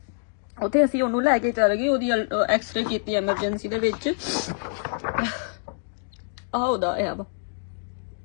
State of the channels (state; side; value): silent; right; digital silence